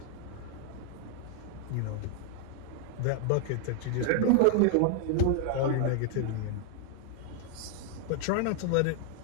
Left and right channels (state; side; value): different; both; correlation 0.00